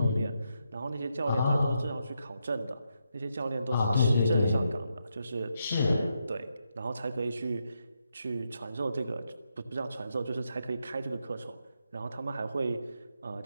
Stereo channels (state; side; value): inverted; both; correlation -0.82